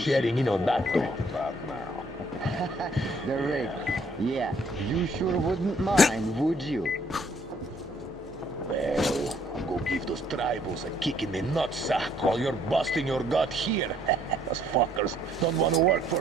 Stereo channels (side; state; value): both; normal; correlation 0.64